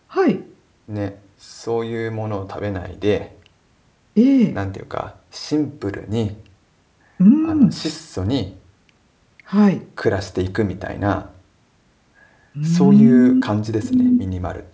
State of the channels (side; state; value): both; identical; correlation 1.00